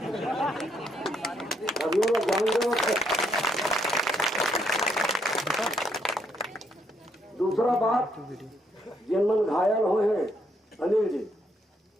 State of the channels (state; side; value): normal; both; correlation 0.73